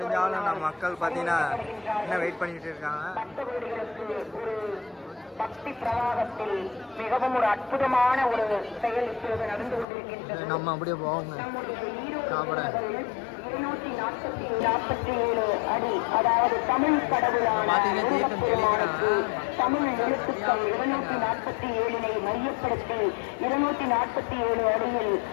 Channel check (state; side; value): drops out; right; at 9.9 s